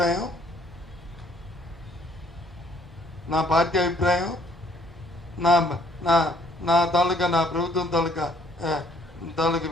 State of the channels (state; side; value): normal; both; correlation 0.62